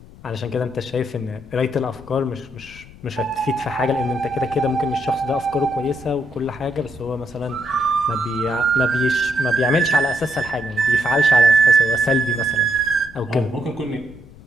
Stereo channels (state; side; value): noise; left; rumble, 20 dB below the sound